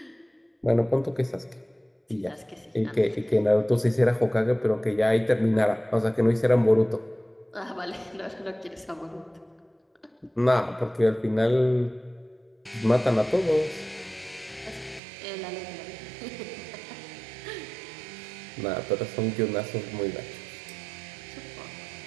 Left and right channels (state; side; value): drops out; left; at 15.0 s